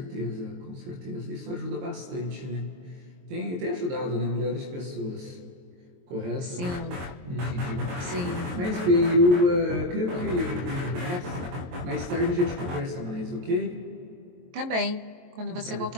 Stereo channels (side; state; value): left; late; 23 ms